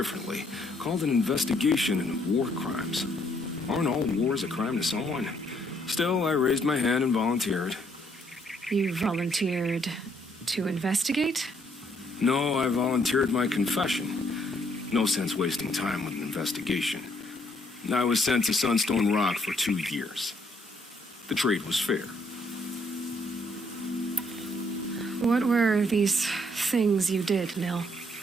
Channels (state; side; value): normal; both; correlation 0.69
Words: called an investigation into war crimes. Aren't all wars a crime to someone? Still, I raised my hand and volunteered. You volunteered to investigate? No, I volunteered my confession. No sense wasting time with an investigation. I was sent to Sunstone Rock for 2 years. The trade was fair. What were these things you did, Nil?